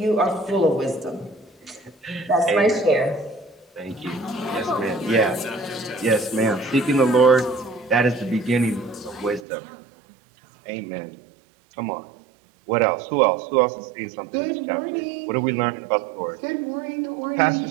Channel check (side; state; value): left; drops out; at 9.5 s